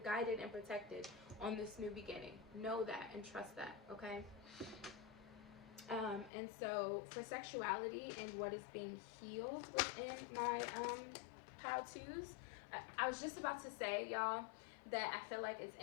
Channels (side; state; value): right; drops out; at 6.3 s